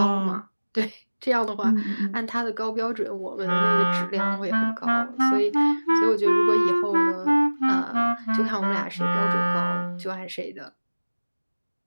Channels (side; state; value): both; inverted; correlation -1.00